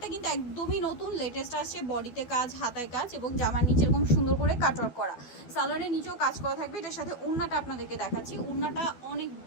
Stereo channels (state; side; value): late; right; 12 ms